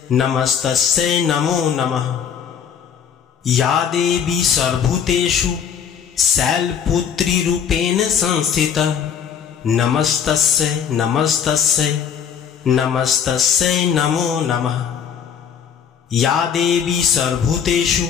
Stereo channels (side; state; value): right; quieter; 7.8 dB